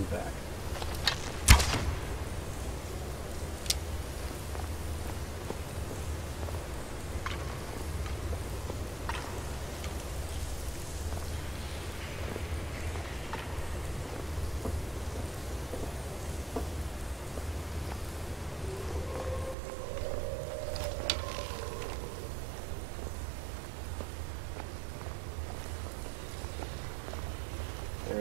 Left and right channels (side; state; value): left; drops out; at 19.6 s